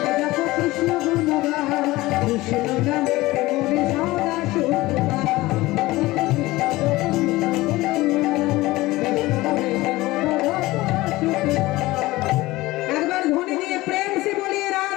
কৃষ্ণ নামে মোহন সদা সুখ পাও। একবার ধ্বনি দিয়ে প্রেম সে বলিয়ে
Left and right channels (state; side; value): quieter; right; 19.1 dB